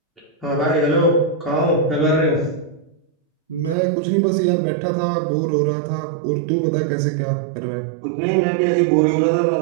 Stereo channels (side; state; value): left; drops out; at 3.8 s